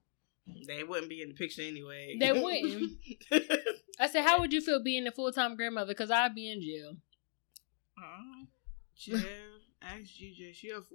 They wouldn't be in the picture anyway. They wouldn't. I said, how would you feel being a full-time grandmother? Because I'd be in jail. Yeah, ask GJ. She a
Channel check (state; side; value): silent; right; digital silence